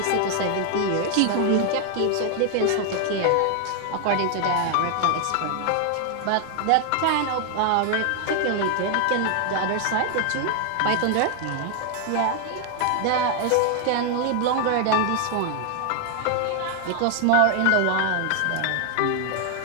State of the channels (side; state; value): both; different; correlation 0.00